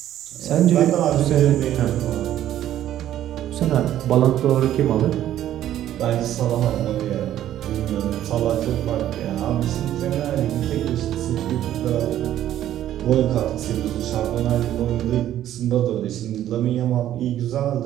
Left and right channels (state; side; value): quieter; left; 12.1 dB